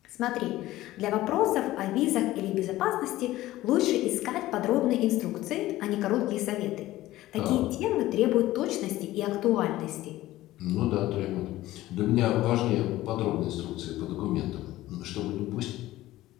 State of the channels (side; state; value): right; quieter; 16.1 dB